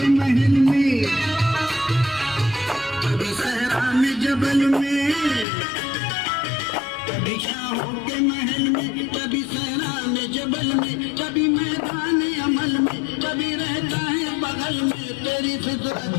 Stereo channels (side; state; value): right; drops out; at 5.5 s